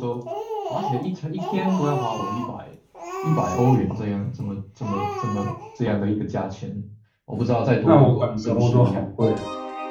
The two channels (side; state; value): both; identical; correlation 1.00